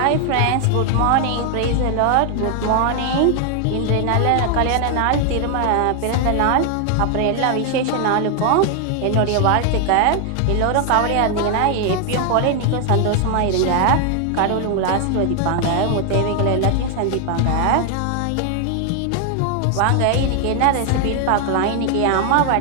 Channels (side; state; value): both; different; correlation 0.00